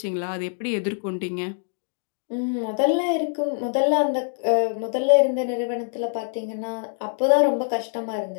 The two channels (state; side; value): silent; right; 62 dB below the other